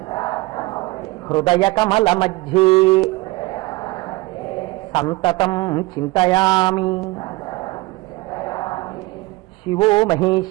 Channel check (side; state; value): left; quieter; 21.5 dB